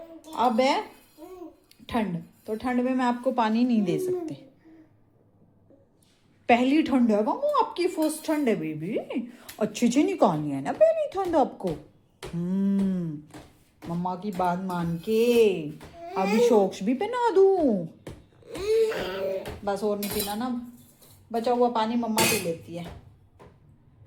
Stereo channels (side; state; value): both; identical; correlation 1.00